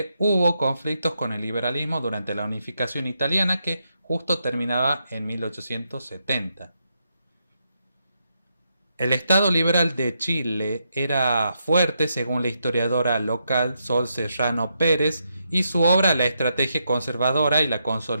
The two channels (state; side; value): inverted; both; correlation -0.81